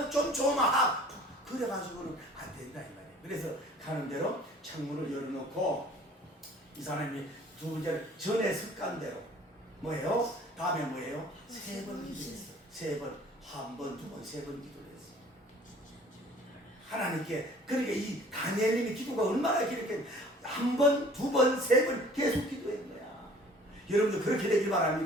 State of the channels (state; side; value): normal; both; correlation 0.51